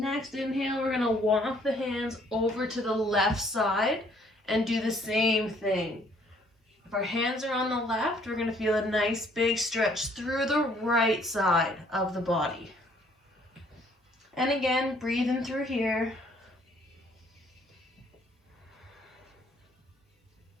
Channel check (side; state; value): both; normal; correlation 0.62